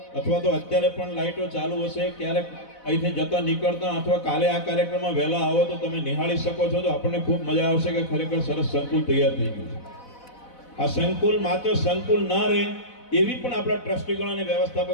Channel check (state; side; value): late; right; 4.0 ms